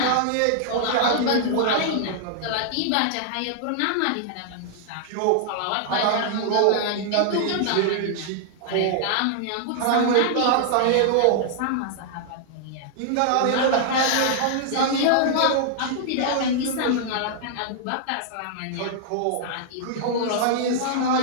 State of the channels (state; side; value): different; both; correlation -0.01